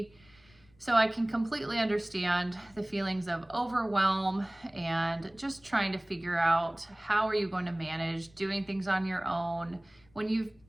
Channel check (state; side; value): noise; left; rumble, 29 dB below the sound